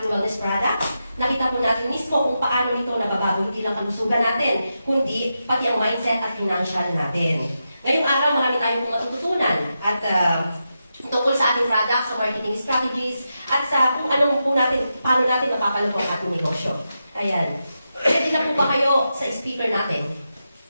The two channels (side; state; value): both; inverted; correlation -0.88